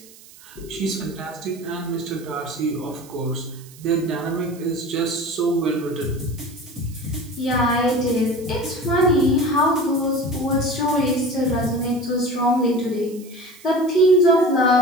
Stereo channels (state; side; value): noise; right; hiss, 22 dB below the sound